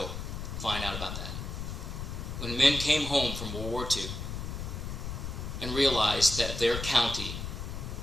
find out about that. When men came home from World War II and realized that their county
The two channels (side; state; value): left; noise; rumble, 6 dB below the sound